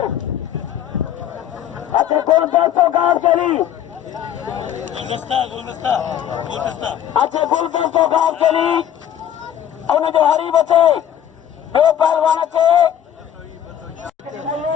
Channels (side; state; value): right; quieter; 10.2 dB